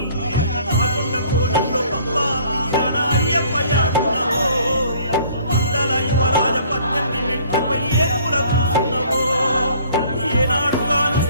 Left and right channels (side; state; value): both; inverted; correlation -0.56